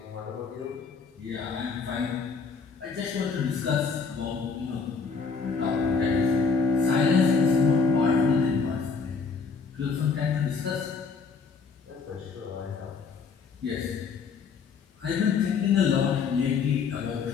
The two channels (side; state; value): right; quieter; 5.2 dB